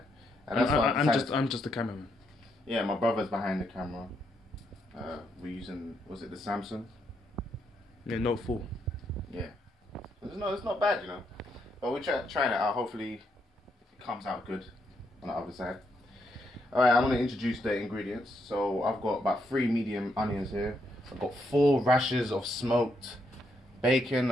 And that's I'm just the cameraman. Yeah, my brother's behind the camera. We're using, was it the Samsung? Yeah, Note 4. Yeah. It's not bad, you know. But we're trying it out. Hopefully it comes out good on the other side. Alright, I'm going to introduce the ingredients. So I've got about 3 medium onions here. I've got 4 rashers of smoked bacon.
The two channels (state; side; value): normal; both; correlation 0.77